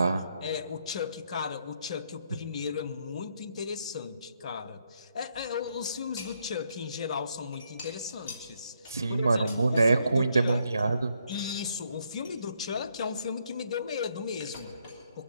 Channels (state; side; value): inverted; both; correlation -0.75